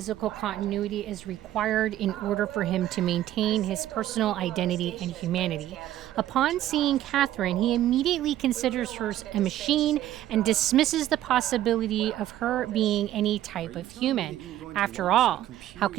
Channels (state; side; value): quieter; left; 13.1 dB